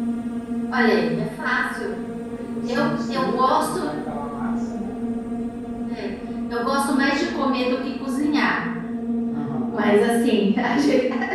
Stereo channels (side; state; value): both; identical; correlation 1.00